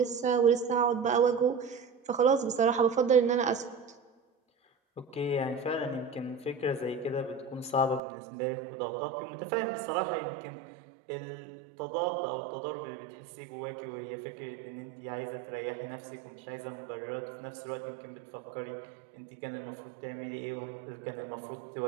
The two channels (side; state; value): left; drops out; at 8.0 s